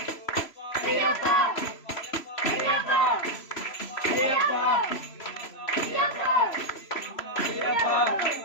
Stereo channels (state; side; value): late; right; 3.0 ms